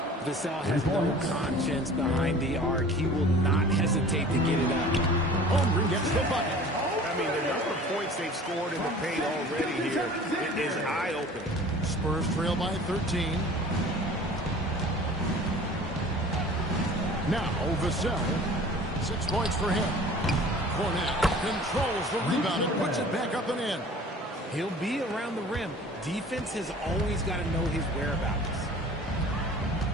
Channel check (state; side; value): normal; both; correlation 0.45